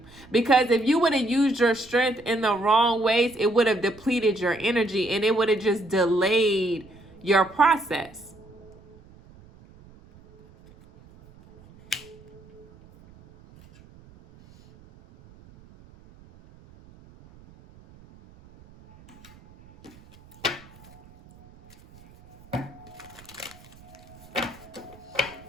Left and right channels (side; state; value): right; noise; rumble, 24 dB below the sound